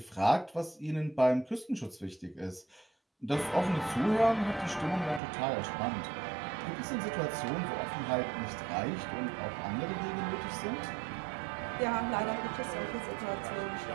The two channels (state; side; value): drops out; left; at 5.2 s